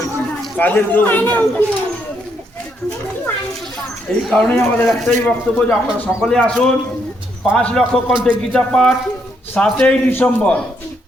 কাজের কেউ এই কারণেই আমাদের একটাই বক্তব্য যে আপনারা সকলে আসুন। 5 লক্ষ কণ্ঠে গীতা পাঠ 7ই ডিসেম্বর,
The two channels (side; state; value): both; normal; correlation 0.75